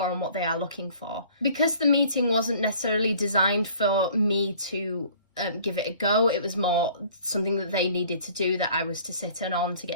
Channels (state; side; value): inverted; both; correlation -0.52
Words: and what they are looking for. Because the meeting wasn't necessarily designed for me to give it a go, it was more something that they needed to do that I was to sit in on to